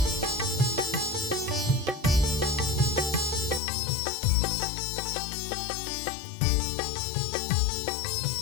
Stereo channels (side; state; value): right; drops out; at 3.6 s